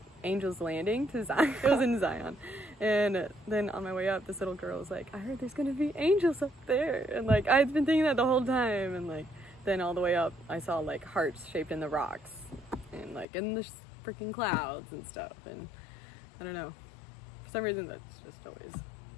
Angel's Landing to Zion. It was in Zion. And then on my way up, this little girl was like, I heard there's going to be angels up there. And, like, I'd been thinking that the whole time. And, like, then all the way up, I saw, like, hearts shaped in the rocks. And, like, in the freaking clouds and stuff. And I don't know. For some reason, that's just always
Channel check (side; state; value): right; drops out; at 13.2 s